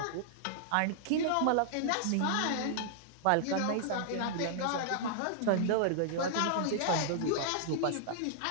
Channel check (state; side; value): different; both; correlation -0.01